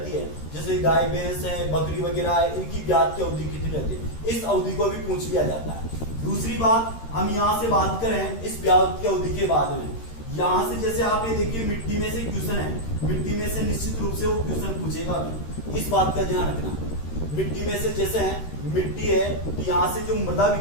है, जैसे गाय भैंस है, बकरी वगैरह है, इनकी ब्याज की अवधि कितनी रहती है, इस अवधि को भी पूछ लिया जाता है। दूसरी बात, हम यहाँ से बात करें इस ब्याज की अवधि के बाद में, यहाँ से जैसे आप ये देखिए मिट्टी में से क्वेश्चन है, मिट्टी में से निश्चित रूप से वो क्वेश्चन पूछेगा भी, इस बात का ध्यान रखना। मिट्टी में से जैसे है मिट्टी है, तो यहाँ से जो मृदा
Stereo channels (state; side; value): late; right; 13 ms